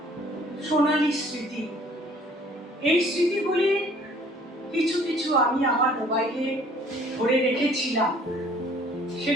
সোনালী স্মৃতি। এই স্মৃতিগুলির কিছু কিছু আমি আমার মোবাইলে ভরে রেখেছিলাম,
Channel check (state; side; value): normal; both; correlation 0.56